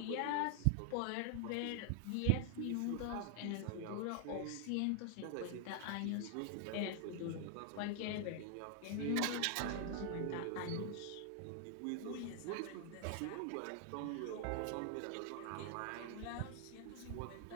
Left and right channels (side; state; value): both; different; correlation 0.00